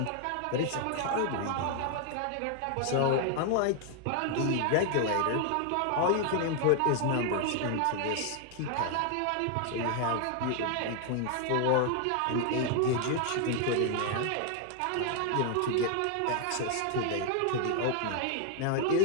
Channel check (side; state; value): both; different; correlation 0.00